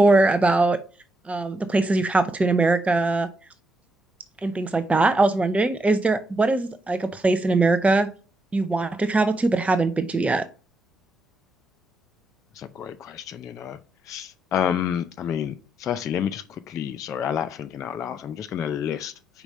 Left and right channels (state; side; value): normal; both; correlation 0.81